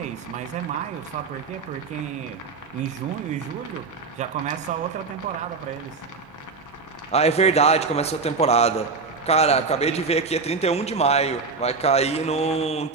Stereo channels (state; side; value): quieter; left; 4.5 dB